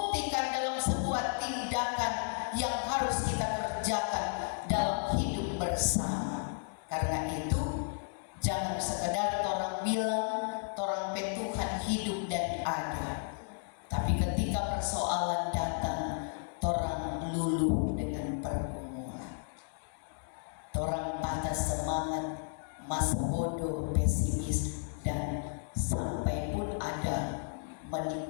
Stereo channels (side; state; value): right; silent; digital silence